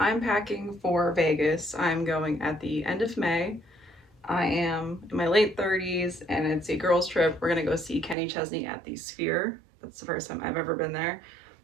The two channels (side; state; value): left; drops out; at 8.2 s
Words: packing for Vegas. I'm going at the end of May. I am in my late 30s and it's a girls' trip. We're gonna go see Kenny Chesney at the Sphere. That's the first time I've ever been there.